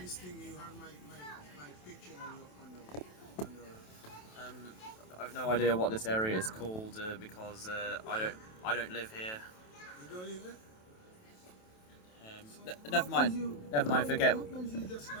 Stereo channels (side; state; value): right; late; 27 ms